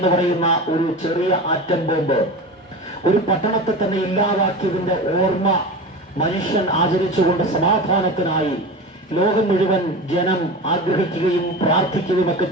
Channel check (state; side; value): normal; both; correlation 0.29